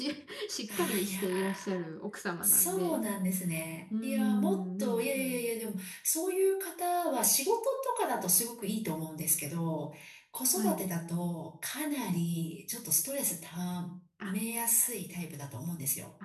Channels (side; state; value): both; identical; correlation 1.00